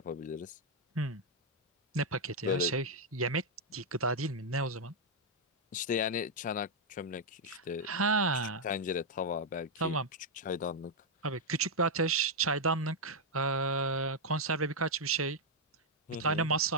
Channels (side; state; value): both; normal; correlation -0.02